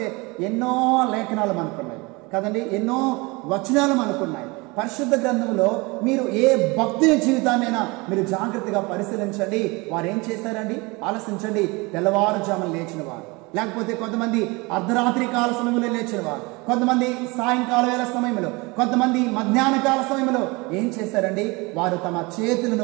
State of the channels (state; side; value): quieter; left; 25.6 dB